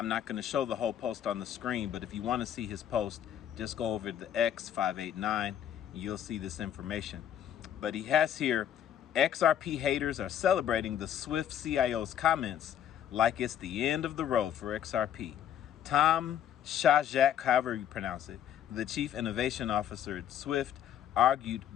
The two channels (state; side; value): quieter; right; 10.1 dB